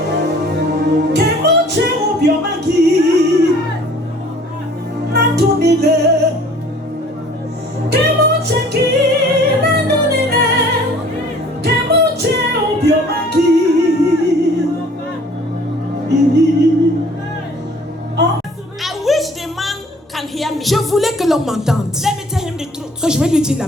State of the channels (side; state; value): both; normal; correlation 0.52